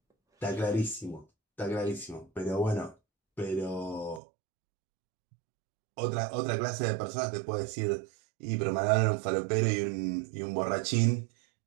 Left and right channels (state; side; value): drops out; left; at 4.2 s